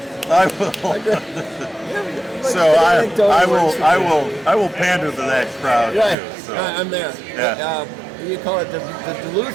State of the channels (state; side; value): drops out; left; at 6.2 s